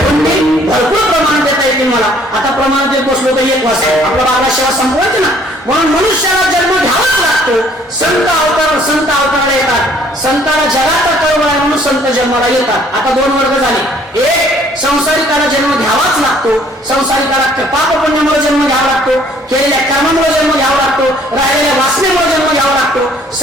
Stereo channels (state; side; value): normal; both; correlation 0.60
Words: भरपूर प्रमाण देता येते मला. आता प्रमाण देत बसलो तर एक वाजता आपला बाबा सेवा संपवायची ना, म्हणून मनुष्याला जन्म घ्यावाच लागतो. संत अवताराला येतात. संताला जगाचा कळवळ आहे म्हणून संत जन्माला येतात. आता दोन वर्ग झाले. एक संसारिकाला जन्म घ्यावाच लागतो. संसारिकाला पाप पुण्यामुळे जन्म घ्यावा लागतो, केलेल्या कर्मामुळे जन्म घ्यावा लागतो, राहिलेल्या वासनेमुळे जन्म घ्यावा लागतो.